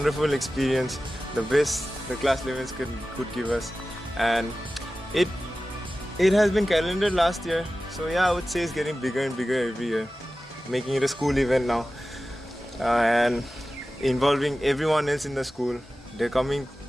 experience, the best the class 11s could give us, and it has been calendared last year, so yeah, I would say it's getting bigger and bigger every year, making it a school event now, and involving everyone else in the school. They're coming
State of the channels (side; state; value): both; normal; correlation 0.95